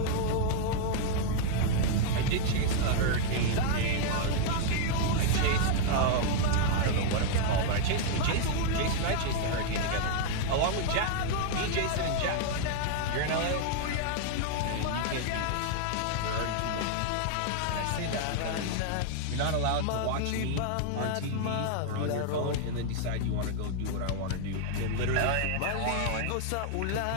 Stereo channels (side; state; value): both; different; correlation 0.00